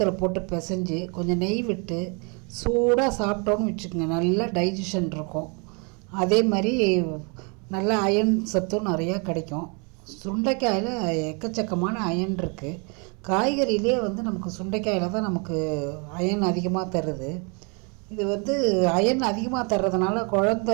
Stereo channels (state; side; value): quieter; left; 33.8 dB